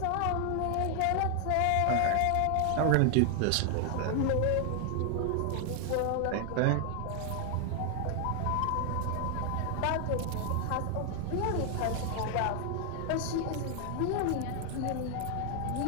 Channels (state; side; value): different; both; correlation 0.00